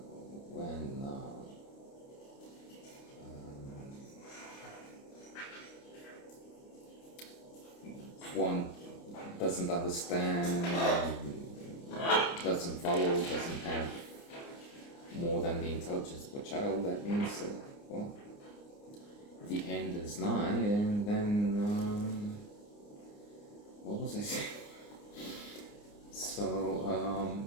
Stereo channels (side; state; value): right; late; 29 ms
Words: when one doesn't understand, doesn't follow, doesn't have more than the intelligence of a child. That means, well, the end is nigh, and then, what was I saying? So,